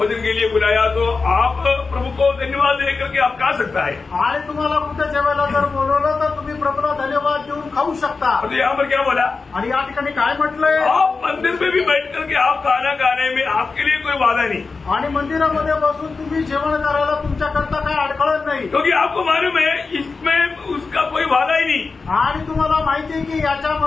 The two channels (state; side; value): quieter; right; 4.3 dB